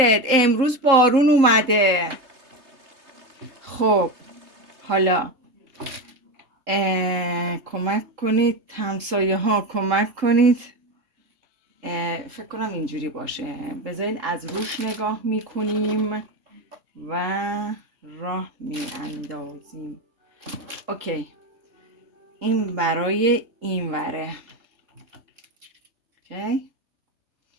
امروز بارون اومده. خب حالا کمک کنید همسایه ها، کمک کنید. فکر کنم اینجوری باشه. بذارید از روش نگاه میکنیم و راه میاندازیم. اوکی، این برای این وره. اوکی،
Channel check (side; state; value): left; late; 3.8 ms